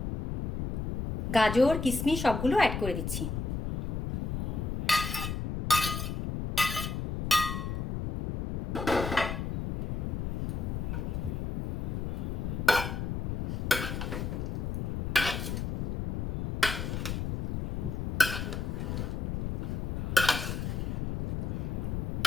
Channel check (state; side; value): noise; left; rumble, 1 dB below the sound